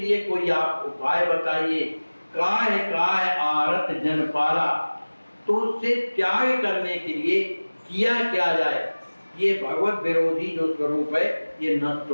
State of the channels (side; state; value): both; inverted; correlation -1.00